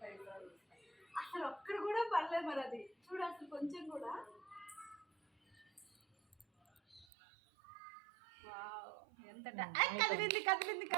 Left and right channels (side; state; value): left; drops out; at 7.1 s